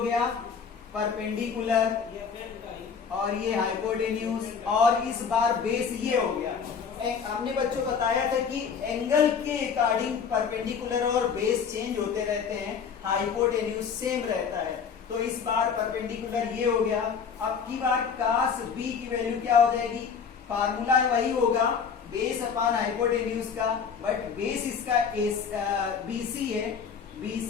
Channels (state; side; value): quieter; right; 6.5 dB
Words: परपेंडिकुलर और ये हाइपोटेन्यूज और इस बार बेस ये हो गया। हमने बच्चों बताया था कि एंगल के अकॉर्डिंग परपेंडिकुलर और बेस चेंज होते रहते हैं, हाइपोटेन्यूज सेम रहता है। तो इस बार परपेंडिकुलर ये हो गया। अब की बार cos b की वैल्यू क्या हो जाएगी, फार्मूला वही होगा बेस अपॉन हाइपोटेन्यूज का, बट बेस इसका BC है,